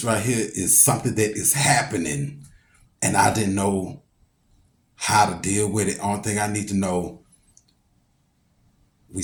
right here is something that is happening, and I didn't know how to deal with it. Only thing I need to know, we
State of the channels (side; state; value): both; identical; correlation 1.00